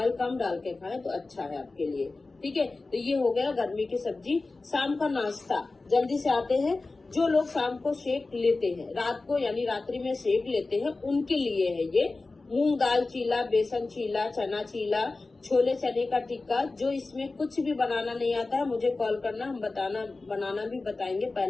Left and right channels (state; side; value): quieter; right; 3.5 dB